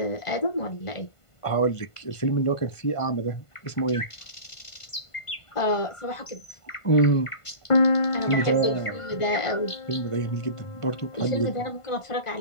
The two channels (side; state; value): right; late; 1.5 ms